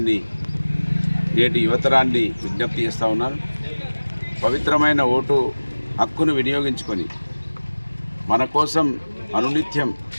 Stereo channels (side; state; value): both; inverted; correlation -1.00